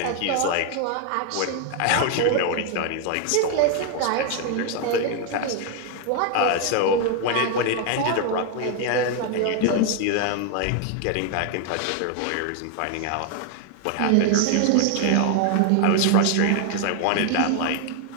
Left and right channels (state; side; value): different; both; correlation 0.00